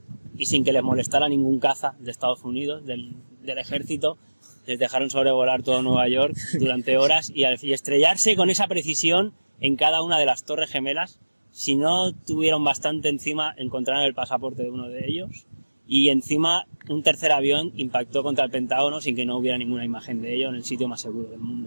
y sin que les molestara ningún caza de Estados Unidos, del ejército, les dejaron sobrevolar todo Nueva York durante horas y estrellarse con esa precisión en cada una de las torres gemelas. Si no tuvieron bastante encima, encontraron el pasaporte de uno de ellos y encima un tercer avión impactó contra el Pentágono sin que no hubiera ninguna imagen de ello en el sitio más seguro del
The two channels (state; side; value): inverted; both; correlation -1.00